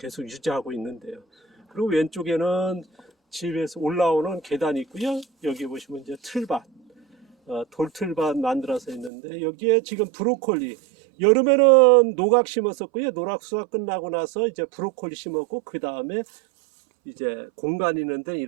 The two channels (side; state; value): left; drops out; at 9.1 s